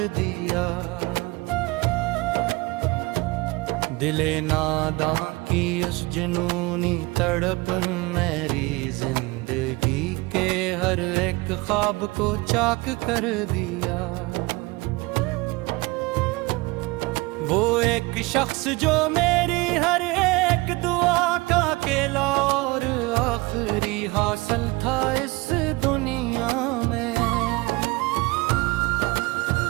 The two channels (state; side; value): quieter; left; 23.4 dB